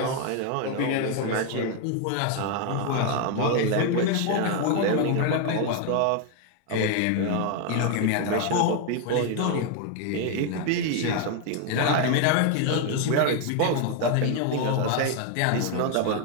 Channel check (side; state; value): both; different; correlation 0.01